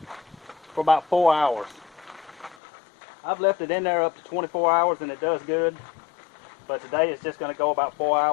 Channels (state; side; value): drops out; right; at 2.6 s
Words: for about 4 hours. I've left it in there up to 24 hours and it does good. But today it's just going to go about 4